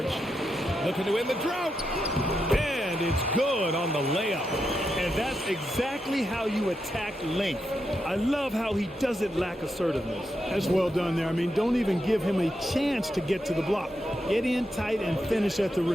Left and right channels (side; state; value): both; normal; correlation 0.85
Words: Looking to end the drought. And it's good on the layup. And that's exactly how you attack length. I love how he doesn't lack assertiveness. That's well done there. I mean, don't even give him a chance to get to the block. Get in tight and finish at the